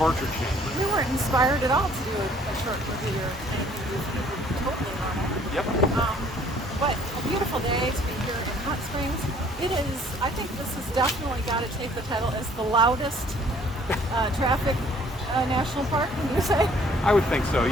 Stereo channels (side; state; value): both; normal; correlation 0.59